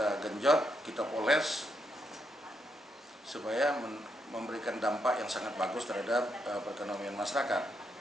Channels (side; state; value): both; normal; correlation 0.79